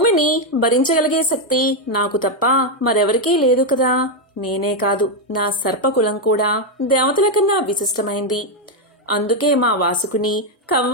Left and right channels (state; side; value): normal; both; correlation 0.03